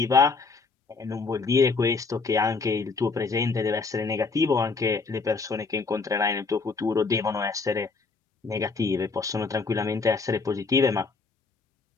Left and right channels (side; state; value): right; quieter; 4.4 dB